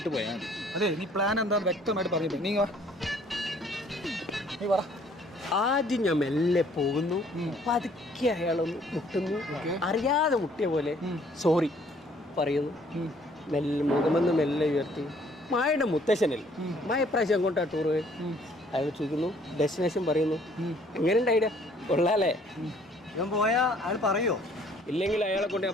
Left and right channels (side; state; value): both; normal; correlation 0.60